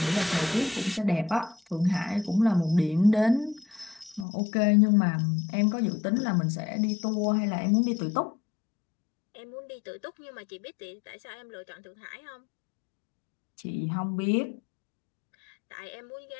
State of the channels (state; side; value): drops out; right; at 4.2 s